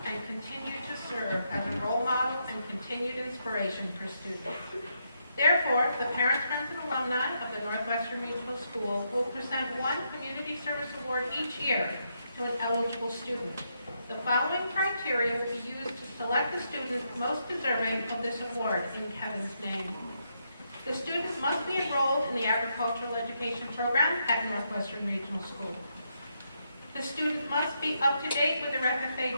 and continue to serve as a role model and continued inspiration for students. Therefore, the parents, friends, and alumni of the Northwestern Regional School will present one Community Service Award each year to an eligible student. The following criteria will be used to select the student most deserving of this award in Kevin's name. The student must be enrolled in the agricultural education program at Northwestern Regional School. The student must be up to date with their FFA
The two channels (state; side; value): inverted; both; correlation -0.79